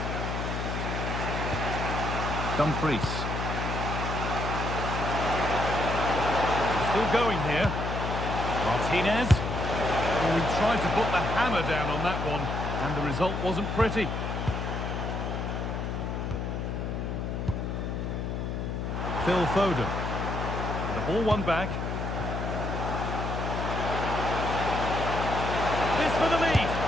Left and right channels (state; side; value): noise; left; hum, 3 dB below the sound